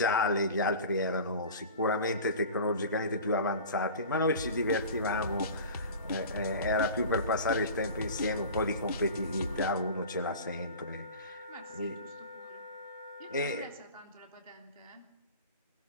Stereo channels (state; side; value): inverted; both; correlation -0.37